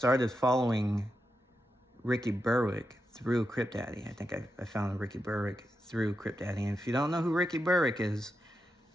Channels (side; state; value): both; normal; correlation 0.87